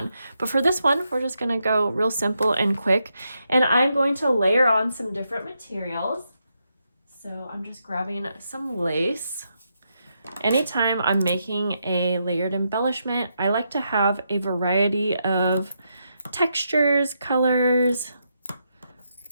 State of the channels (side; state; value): both; inverted; correlation -0.82